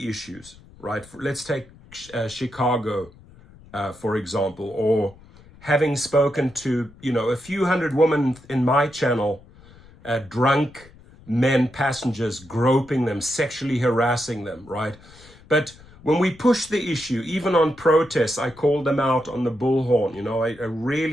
issues, right? Let's take Chicago, for example, or having spoken to, you know, a few hundred women in my channel, drunk men passengers, groping them, sexually harassing them, right? But when we push the issue, even on protests, I called them out on the bullhorn, you know, I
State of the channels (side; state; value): left; noise; rumble, 23 dB below the sound